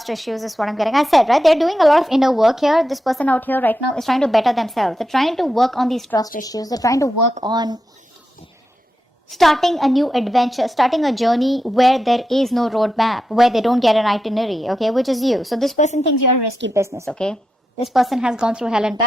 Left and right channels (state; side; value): normal; both; correlation 0.88